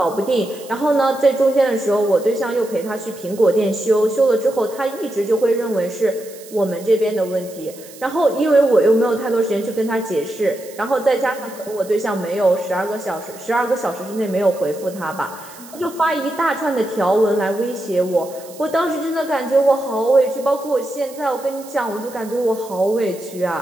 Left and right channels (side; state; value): right; noise; hiss, 19 dB below the sound